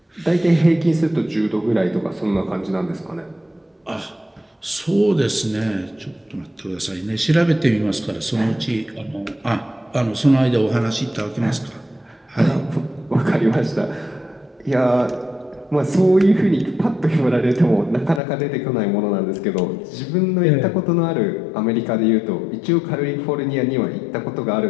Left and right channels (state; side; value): drops out; right; at 18.2 s